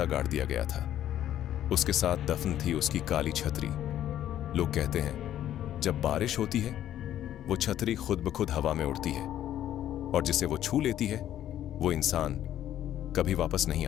गाड़ दिया गया था। उसके साथ दफन थी उसकी काली छतरी। लोग कहते हैं जब बारिश होती है वो छतरी खुद ब खुद हवा में उड़ती है और जिसे वो छू लेती है वो इंसान कभी वापस नहीं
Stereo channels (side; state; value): right; quieter; 11.7 dB